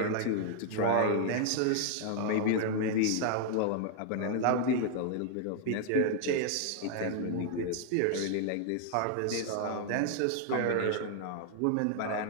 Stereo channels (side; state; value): both; different; correlation 0.00